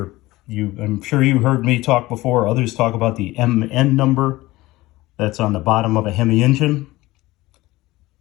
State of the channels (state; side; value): quieter; right; 18.8 dB